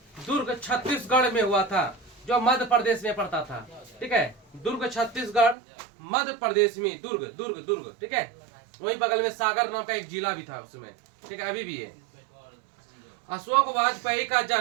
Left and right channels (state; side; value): drops out; left; at 5.6 s